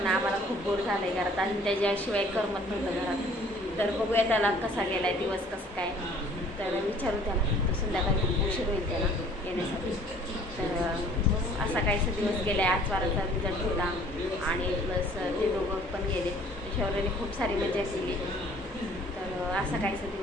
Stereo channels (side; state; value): both; normal; correlation 0.54